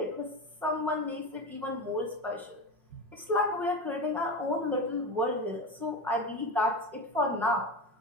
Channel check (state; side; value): late; left; 5.5 ms